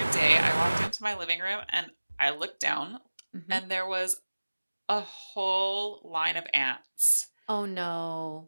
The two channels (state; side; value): inverted; both; correlation -1.00